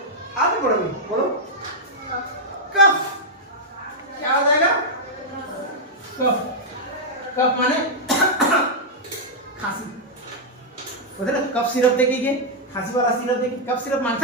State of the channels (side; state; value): both; normal; correlation -0.05